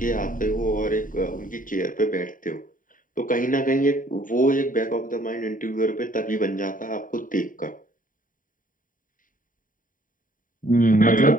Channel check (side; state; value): right; late; 0.39 ms